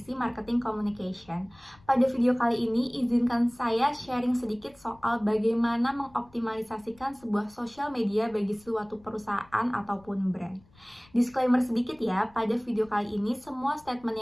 Marketing Communication. Pada video kali ini, izinkan saya sharing sedikit soal bagaimana mengoptimalisasikan sebuah sosial media bagi suatu perusahaan ataupun brand. Disclaimer sedikit ya, pada video kali ini semua statement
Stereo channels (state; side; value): noise; left; rumble, 28 dB below the sound